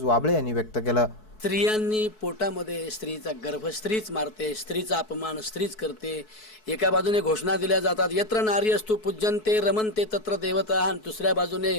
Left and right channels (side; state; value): right; late; 4.6 ms